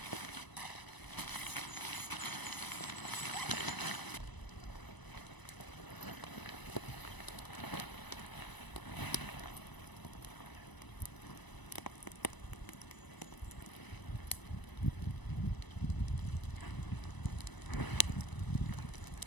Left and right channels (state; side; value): late; right; 1.0 ms